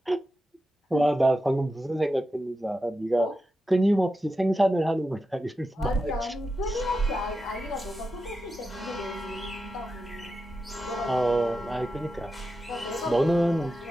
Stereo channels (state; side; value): normal; both; correlation 0.90